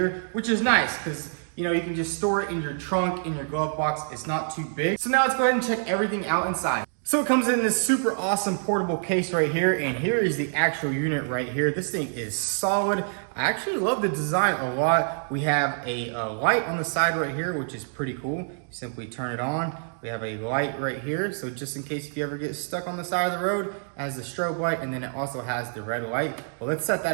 which is nice because you can just store it in your trunk, in your glove box. It's not too big. So now let's go ahead and check everything out inside. So it comes in this super awesome portable case right here, and here is the actual unit right here. This thing is solid. I actually love the design a lot. We have a light on the side right here, which is pretty cool. You simply turn it on. We have a light right here, so just in case if you ever get stuck on the side of the road, it has the strobe light, and then it also has the red light. Well, let's set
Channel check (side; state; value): left; silent; digital silence